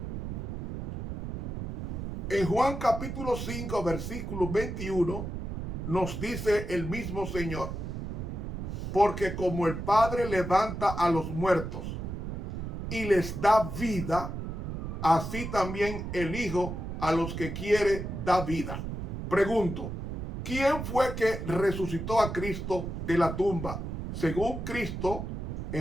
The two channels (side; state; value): right; noise; rumble, 5 dB below the sound